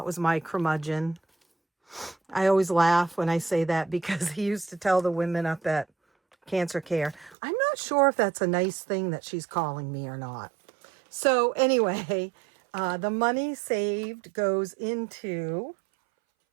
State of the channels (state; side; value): drops out; left; at 7.4 s